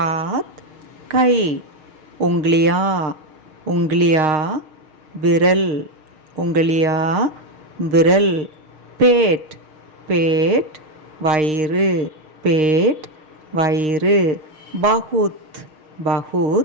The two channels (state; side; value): late; left; 6.5 ms